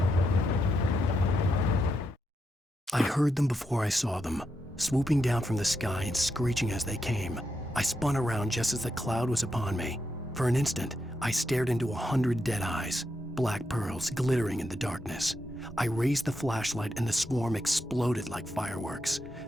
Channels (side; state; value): both; normal; correlation 0.83